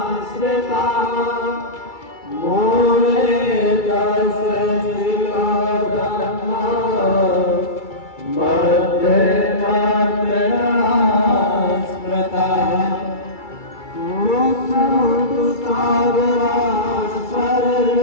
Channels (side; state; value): right; late; 2.3 ms